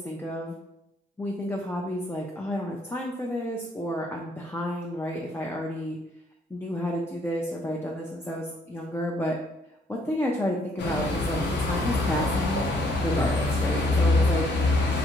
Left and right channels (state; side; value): normal; both; correlation 0.68